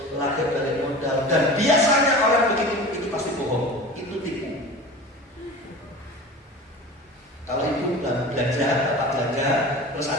lagi balik modal. Dan biasanya orang begitu itu pasti bohong, itu tipu. Kalau ibu belanja, bapak belanja, terus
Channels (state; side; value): normal; both; correlation 0.35